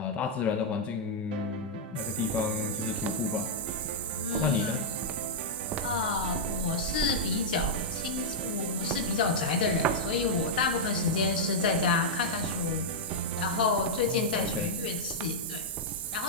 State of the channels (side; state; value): both; normal; correlation -0.06